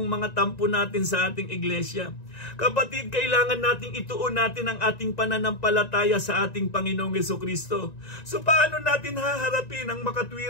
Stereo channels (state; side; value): late; right; 1.9 ms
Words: mga tampo natin sa ating iglesia. Kapatid, kailangan nating ituon natin ang ating pananampalataya sa ating Panginoong Hesukristo. So paano natin haharapin ang